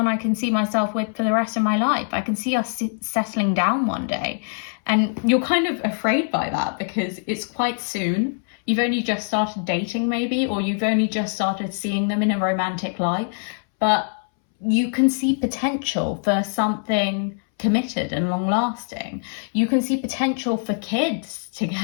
I can see myself with for the rest of my life. I can see us settling down one day. And you're kind of afraid by that because it's quite soon. You've only just started dating maybe, or you've only just started seeing them in a romantic light. But you can see potential for something committed and long lasting. You can see potential for kids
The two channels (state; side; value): silent; right; 63 dB below the other